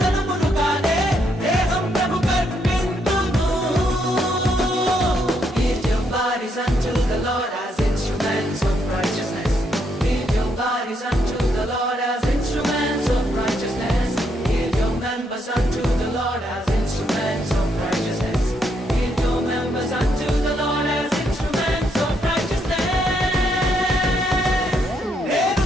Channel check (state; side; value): normal; both; correlation 0.75